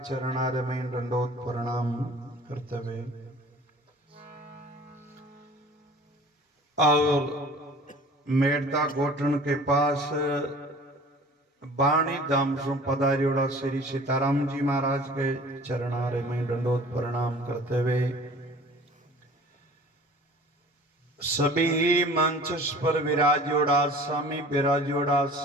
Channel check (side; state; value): both; normal; correlation 0.46